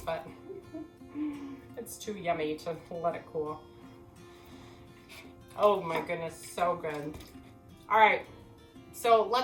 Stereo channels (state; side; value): identical; both; correlation 1.00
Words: but it's too yummy to let it cool. Oh my goodness, so good. All right, so